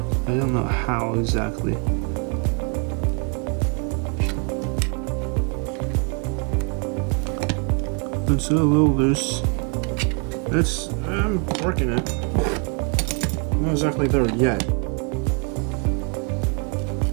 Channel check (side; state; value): left; quieter; 35.7 dB